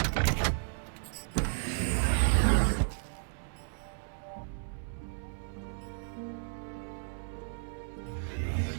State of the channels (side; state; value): left; silent; 56 dB below the other